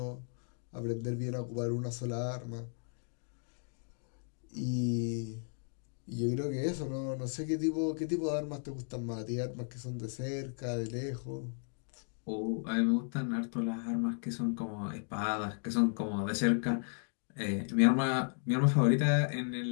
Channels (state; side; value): silent; right; 55 dB below the other